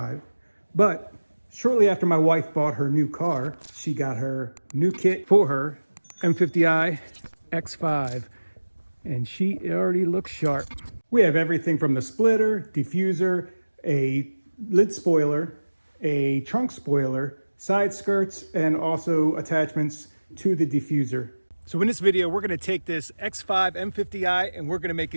but shortly after my wife bought her new car, she got her new kit for her M50i X5, and she already looks sharp. We have everything from the splitter, diffuser, a lid spoiler, a trunk spoiler, side skirts, and also attachments to the diffuser. So in this video, we're gonna take this X5 M50i and we're gonna make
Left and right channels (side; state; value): both; inverted; correlation -1.00